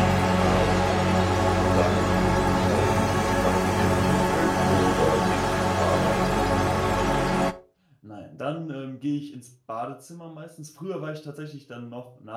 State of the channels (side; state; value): both; identical; correlation 1.00